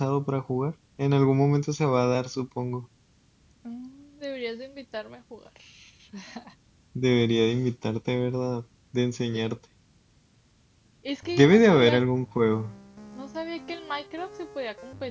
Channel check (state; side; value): identical; both; correlation 1.00